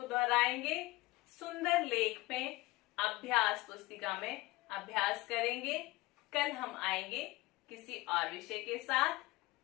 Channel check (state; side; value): quieter; right; 20.5 dB